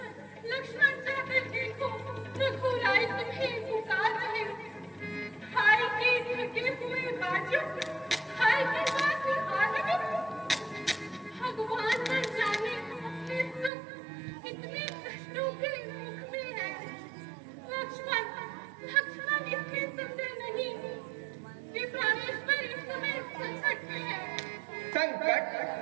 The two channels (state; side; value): drops out; left; at 13.7 s